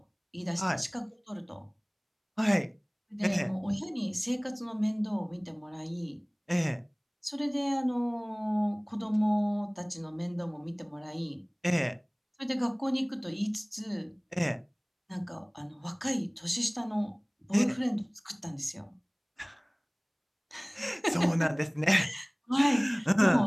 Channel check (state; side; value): identical; both; correlation 1.00